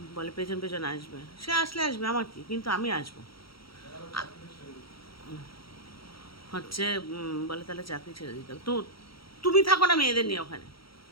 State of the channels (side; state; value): right; late; 0.75 ms